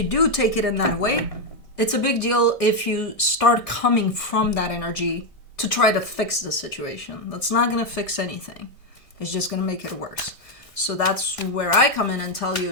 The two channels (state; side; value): late; right; 1.6 ms